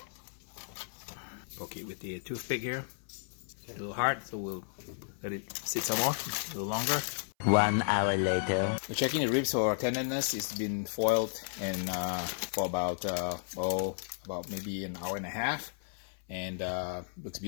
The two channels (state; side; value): silent; right; 55 dB below the other